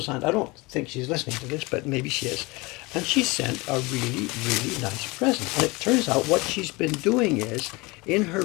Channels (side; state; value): right; quieter; 24.4 dB